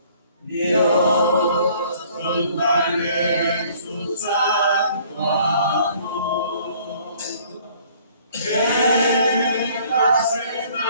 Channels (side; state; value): both; inverted; correlation -0.57